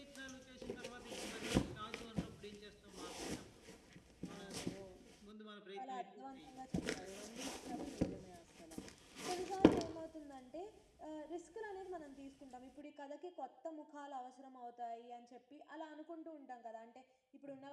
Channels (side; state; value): both; identical; correlation 1.00